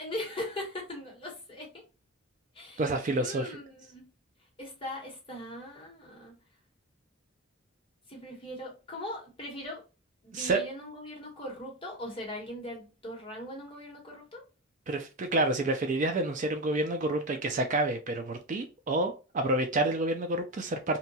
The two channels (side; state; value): both; normal; correlation 0.15